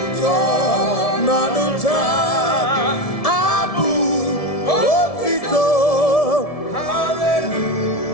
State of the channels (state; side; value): late; right; 1.7 ms